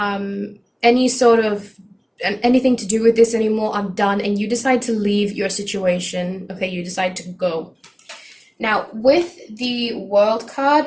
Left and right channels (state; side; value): identical; both; correlation 1.00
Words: any sort of anything to do with this anymore. I'm done. And you decide to leave your situation. Okay, you decide to go. Now, with the World card,